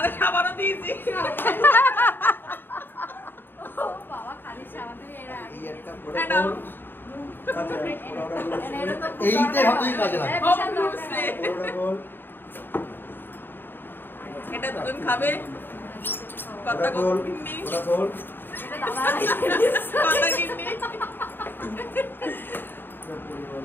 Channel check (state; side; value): late; right; 0.096 ms